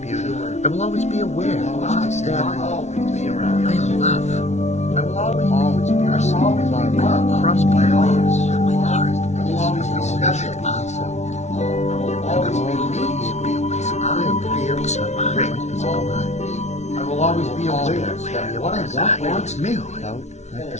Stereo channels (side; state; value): right; late; 0.32 ms